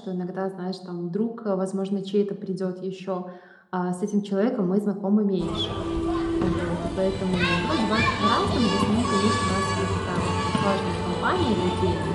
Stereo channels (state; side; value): identical; both; correlation 1.00